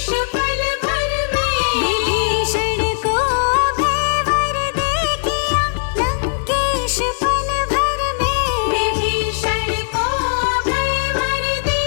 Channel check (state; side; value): silent; right; 67 dB below the other